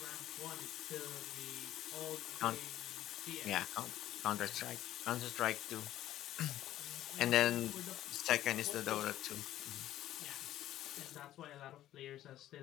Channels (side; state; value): right; quieter; 13.3 dB